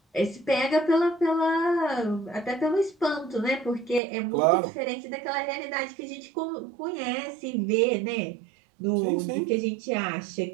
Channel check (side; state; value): left; drops out; at 4.0 s